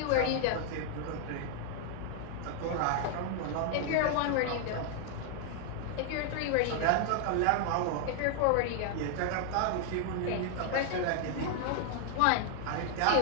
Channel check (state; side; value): different; both; correlation 0.00